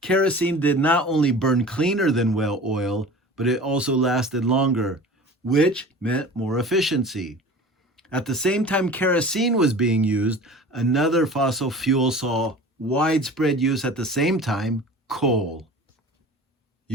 Kerosene did not only burn cleaner than whale oil, but it also lasted longer, which meant more efficiency. At the same time kerosene was being used, another fossil fuel saw widespread use at the same time: coal.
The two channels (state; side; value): normal; both; correlation 0.39